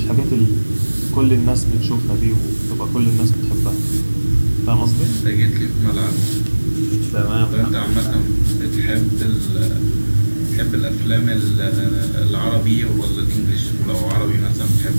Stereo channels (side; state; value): both; inverted; correlation -1.00